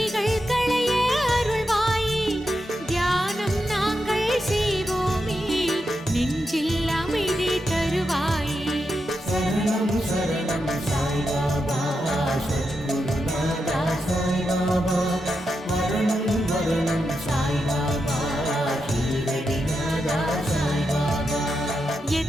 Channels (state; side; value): normal; both; correlation 0.86